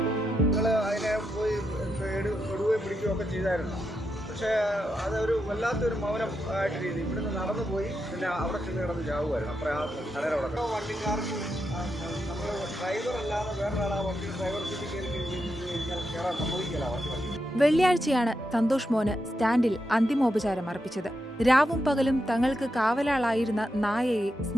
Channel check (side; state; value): both; normal; correlation 0.85